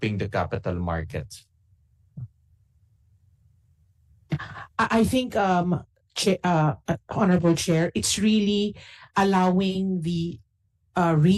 the capital markets? I think, Honorable Chair, it's really allowing the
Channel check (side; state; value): both; identical; correlation 1.00